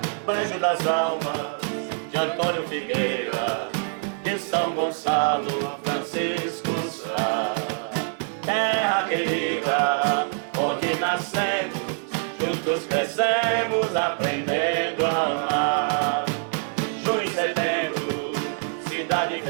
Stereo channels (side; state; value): left; silent; 58 dB below the other